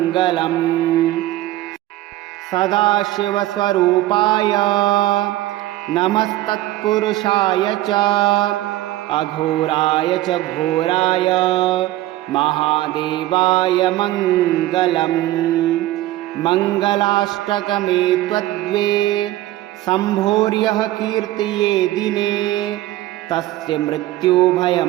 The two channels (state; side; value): quieter; left; 15.9 dB